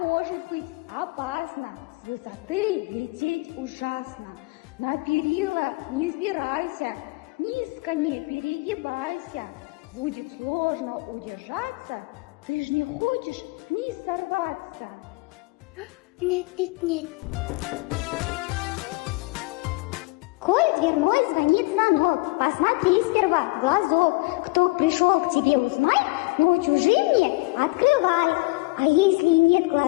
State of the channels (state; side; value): quieter; right; 24.5 dB